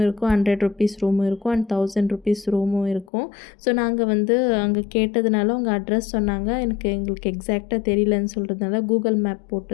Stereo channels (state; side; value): drops out; right; at 3.1 s